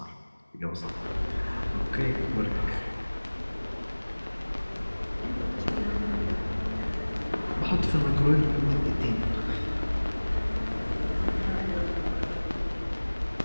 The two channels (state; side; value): inverted; both; correlation -1.00